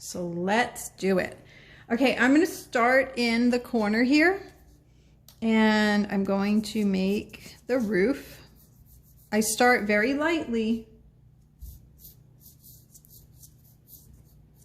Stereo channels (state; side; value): identical; both; correlation 1.00